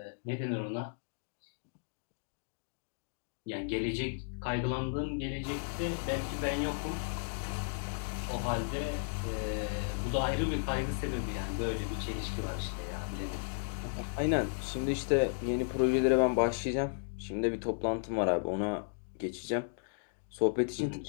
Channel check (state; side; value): silent; right; digital silence